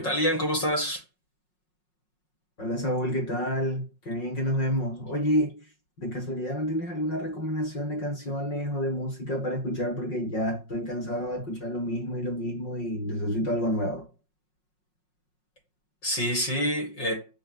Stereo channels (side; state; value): right; late; 5.5 ms